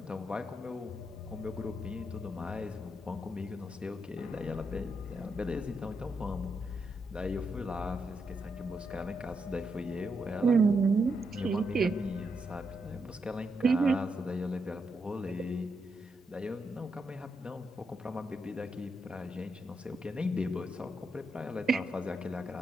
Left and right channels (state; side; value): normal; both; correlation 0.82